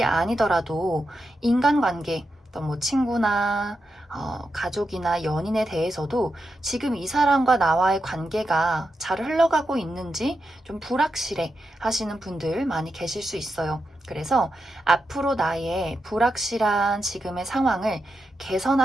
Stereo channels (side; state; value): both; normal; correlation 0.87